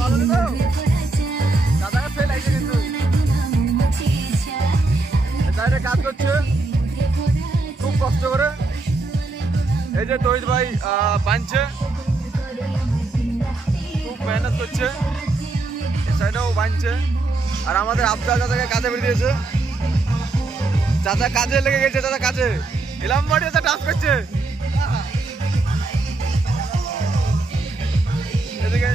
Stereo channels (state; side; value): quieter; left; 3.3 dB